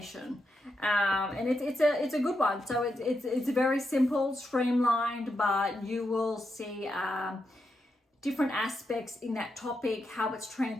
and it's a good one. So it's very simple, streamlined, but you will see different aspects in that topic, how it's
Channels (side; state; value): both; normal; correlation 0.84